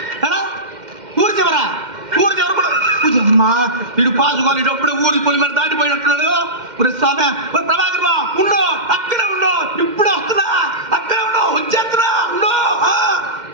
ఊరి చివరా? ఊరి చివర కూడా అమ్మా, వీడు పాసుకోవాలి. అప్పుడే ఊరి పొలి మీద దాటిపోయినట్టున్నాడు. స్వామి ప్రభాకర్ ఉండు, అక్కడే ఉండు, ఇప్పుడే వస్తున్నా, అక్కడే ఉండు, వచ్చేస్తున్నా, ఉండు.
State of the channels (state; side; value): late; left; 2.1 ms